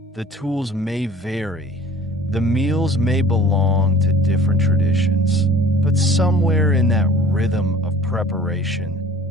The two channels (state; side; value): normal; both; correlation 0.47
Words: the tools may vary, the meals may belong to different traditions. But somewhere in that rhythm of